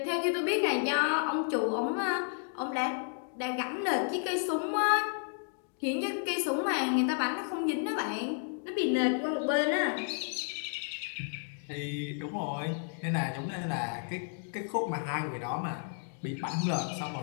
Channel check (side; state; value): right; silent; 56 dB below the other